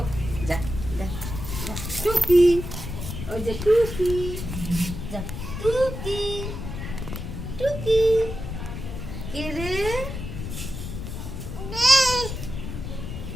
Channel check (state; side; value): noise; left; rumble, 7 dB below the sound